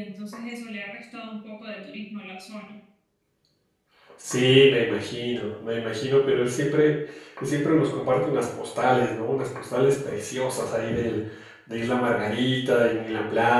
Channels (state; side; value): identical; both; correlation 1.00